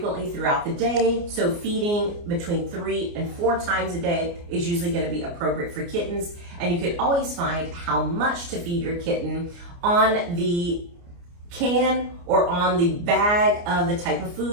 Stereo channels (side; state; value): left; late; 29 ms